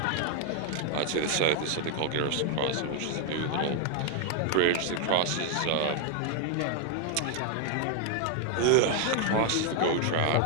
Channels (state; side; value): different; both; correlation 0.00